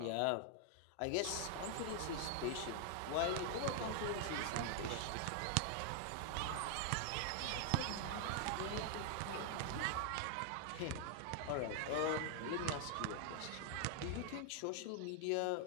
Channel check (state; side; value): different; both; correlation 0.00